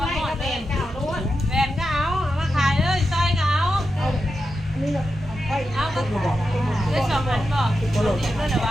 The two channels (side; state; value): both; normal; correlation 0.89